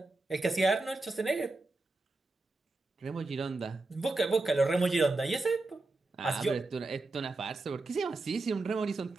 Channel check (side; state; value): left; quieter; 3.2 dB